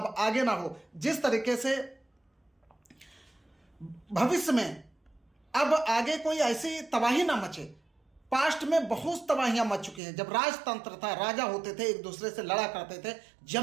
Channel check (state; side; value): drops out; left; at 10.0 s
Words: आगे ना हो, जिस तरीके से भविष्य में अब आगे कोई ऐसी तबाही ना मचे। पास्ट में बहुत तबाहियां मच चुकी हैं। जब राजतंत्र था, राजा होते थे, एक दूसरे से लड़ा करते थे,